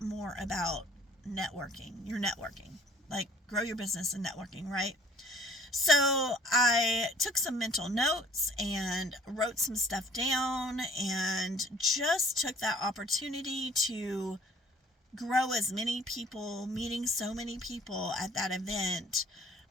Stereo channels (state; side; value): normal; both; correlation 0.55